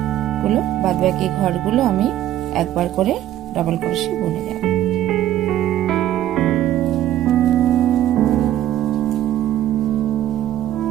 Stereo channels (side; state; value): left; quieter; 12.6 dB